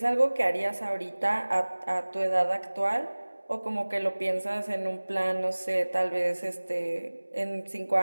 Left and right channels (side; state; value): both; inverted; correlation -1.00